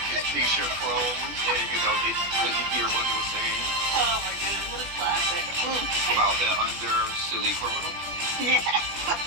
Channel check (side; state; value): left; late; 20 ms